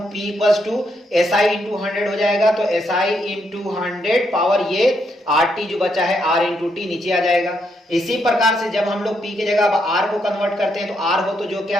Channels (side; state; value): both; normal; correlation 0.77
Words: P equals to SI into 100 हो जाएगा। तो एसआई इंटू 100 पावर ये आर टी जो बचा है आर इंटू टी नीचे आ जाएगा। इसी प्रकार से जब हम लोग पी की जगह अब आर को कन्वर्ट करते हैं, तो आर हो तो जो क्या